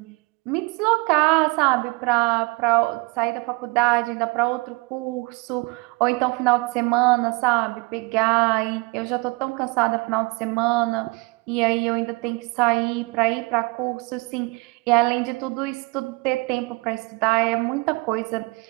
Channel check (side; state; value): left; quieter; 26.9 dB